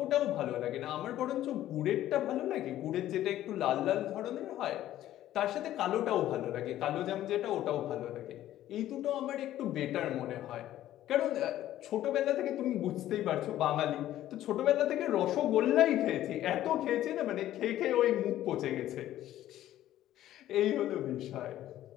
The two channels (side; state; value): right; quieter; 13.2 dB